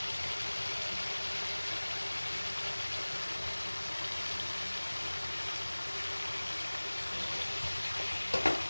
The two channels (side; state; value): both; inverted; correlation -1.00